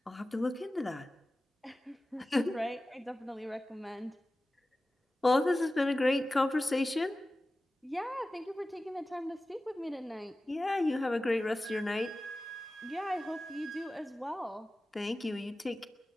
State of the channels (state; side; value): normal; both; correlation 0.96